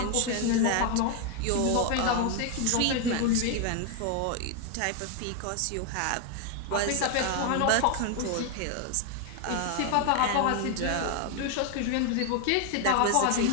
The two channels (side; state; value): both; different; correlation 0.01